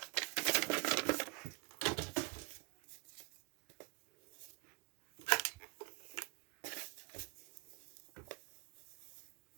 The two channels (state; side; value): quieter; left; 31.1 dB